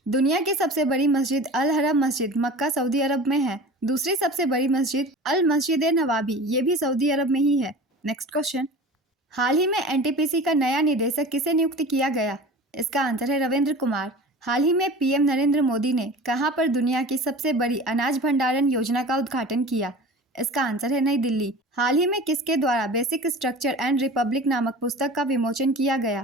दुनिया की सबसे बड़ी मस्जिद अल हरम मस्जिद मक्का, सऊदी अरब में है। दूसरी सबसे बड़ी मस्जिद अल मस्जिद नवाबी, ये भी सऊदी अरब में ही है। नेक्स्ट क्वेश्चन, हाल ही में NTPC का नया निदेशक किसे नियुक्त किया गया? इसका आंसर है रविंद्र कुमार। हाल ही में PM नरेंद्र मोदी ने कहां पर दुनिया की सबसे बड़ी अनाज भंडारण योजना का उद्घाटन किया? इसका आंसर है नई दिल्ली। हाल ही में किसके द्वारा बेसिक स्ट्रक्चर एंड रिपब्लिक नामक पुस्तक का विमोचन किया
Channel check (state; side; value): normal; both; correlation 0.38